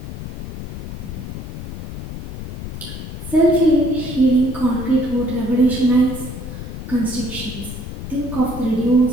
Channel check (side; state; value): left; noise; rumble, 8 dB below the sound